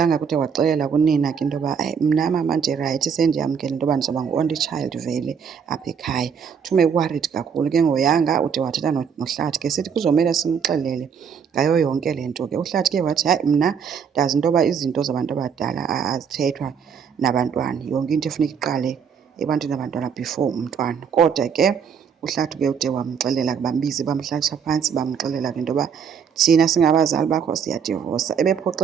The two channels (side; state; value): left; quieter; 7.0 dB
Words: kude waxelela kunina ke into yoba mna mama ndirayithi, sendiyamkela into yoba ndizawuba ngu-only child vele apha ekhaya. Thume worried kakhulu ke ngoYanga, ude wathetha noHlathi ke sithi kuzomele simxelele ngayo yonke le nto ke. uHlathi ke wathi hayi, mna ndazi into yoba izinto zabantu abadala azithethwa nabantwana, yonke into efuneka iqale ebantwini abantwana before umntwana. Kodwa ke uHlathi ke ude wamxelela, bambiza bamhlalisa phantsi bamxelela ke into yoba thina singabazali bakho siyadivosa.